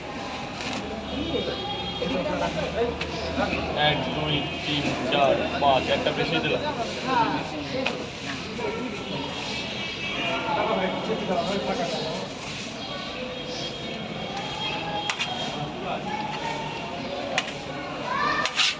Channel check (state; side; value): identical; both; correlation 1.00